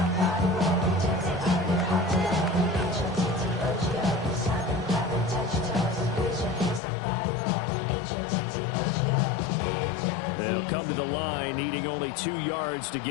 They'll come to the line, needing only 2 yards to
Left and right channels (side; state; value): right; drops out; at 6.8 s